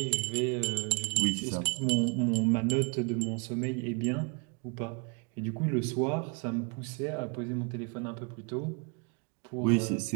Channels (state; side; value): quieter; left; 35.3 dB